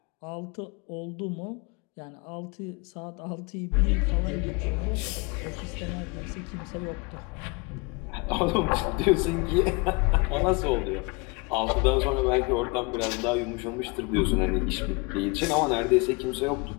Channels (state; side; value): quieter; right; 29.0 dB